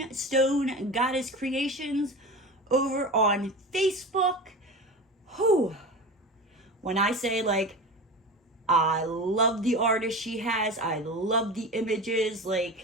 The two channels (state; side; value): normal; both; correlation 0.30